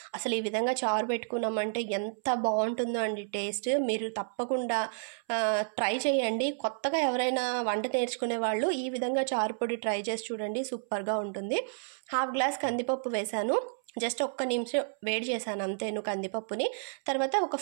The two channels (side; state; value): left; silent; 57 dB below the other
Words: అసలు ఈ విధంగా చారు పెట్టుకున్నామంటే ఎంత బాగుంటుందో అండి టేస్ట్. మీరు తప్పకుండా ట్రై చేయండి. కొత్తగా ఎవరైనా వంట నేర్చుకునే వాళ్ళు ఈ విధంగా చారు పొడి ట్రై చేసి చూడండి, సూపర్గా ఉంటుంది. 1/2 గ్లాస్ కందిపప్పు వేశాను. జస్ట్ 1 నిమిషం వేడి చేశాను అంతేను కందిపప్పుని. తర్వాత ఒక